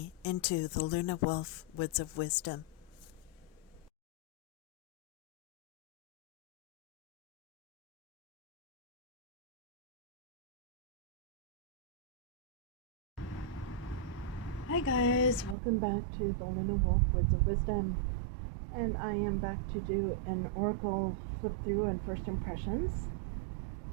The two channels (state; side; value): drops out; left; at 15.6 s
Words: into the Luna Wolf Woods of Wisdom. Hi guys, welcome back to the Luna Wolf Woods of Wisdom. And I am back to do an Oracle flip through and first impressions.